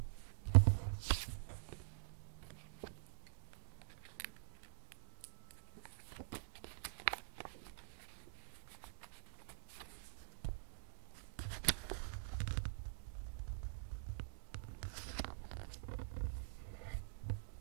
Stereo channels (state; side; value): silent; left; digital silence